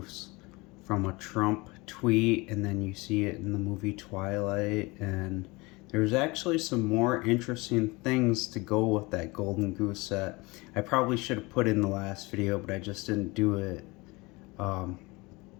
from a Trump tweet, and then you see it in the movie Twilight, and there's actually some more interesting things to go with that Golden Goose set. I probably should have put in the last video, but I just didn't do it.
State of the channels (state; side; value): quieter; right; 24.2 dB